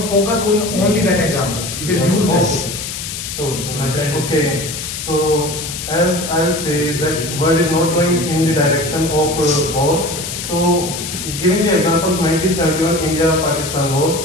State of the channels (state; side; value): noise; left; hiss, 7 dB below the sound